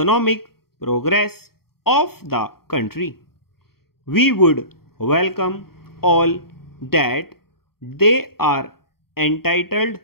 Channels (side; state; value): right; late; 0.94 ms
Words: progress of the country. We would welcome all that they are entitled